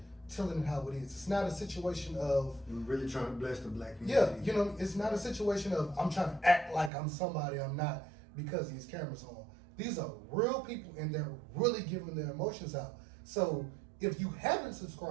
telling it how it is. It's not a situation of, We're really trying to bless the black community. yeah, it's not a situation of I'm trying to act like I'm somebody I'm not because these cameras are on. These are real people and they're really giving their emotions out. So if you haven't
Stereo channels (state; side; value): drops out; left; at 6.9 s